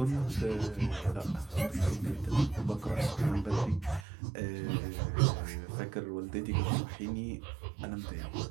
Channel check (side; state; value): left; drops out; at 4.0 s